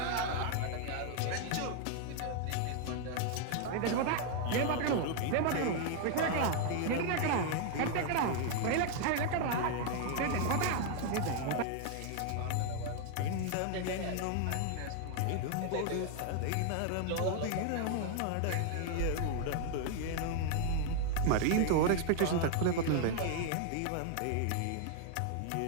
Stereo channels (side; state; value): both; different; correlation 0.00